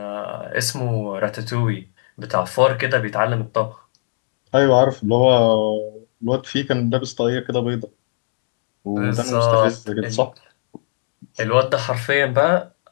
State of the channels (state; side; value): silent; right; digital silence